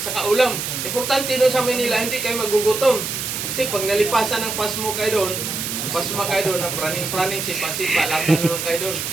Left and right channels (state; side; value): noise; right; hiss, 4 dB below the sound